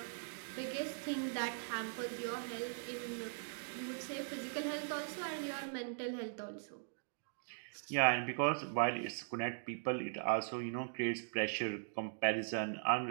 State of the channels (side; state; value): left; silent; digital silence